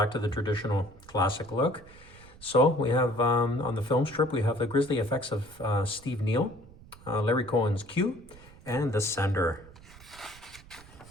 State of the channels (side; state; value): right; noise; rumble, 21 dB below the sound